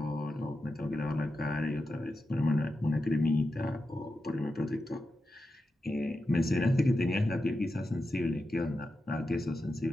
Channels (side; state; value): both; normal; correlation 0.90